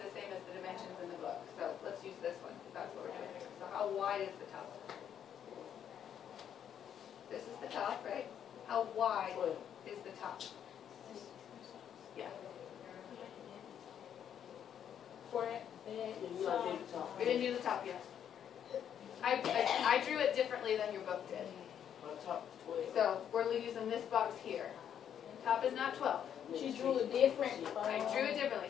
same as the dimensions in the book, so let's use this one, because that's what we're doing here. So how wide is the top? This is the top, right? How wide is the top? Yeah. We didn't do the top yet. I drew it differently than your book did. So we're using this box here. Top is not 12. She drew it different. I drew it differently.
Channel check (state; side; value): quieter; right; 9.1 dB